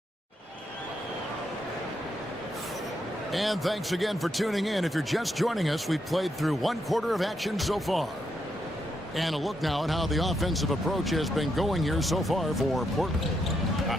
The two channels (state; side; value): normal; both; correlation 0.80